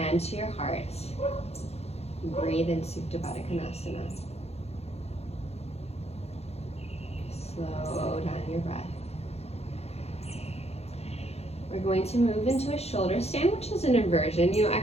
to your heart. Breathe in Supta Baddha Konasana. Slow down your breath. We're going to move into a shoulder stand, which is an inversion.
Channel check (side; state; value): right; late; 0.30 ms